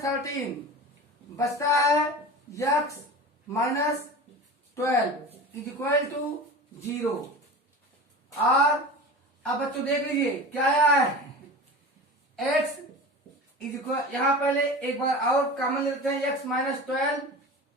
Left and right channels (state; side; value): normal; both; correlation 0.33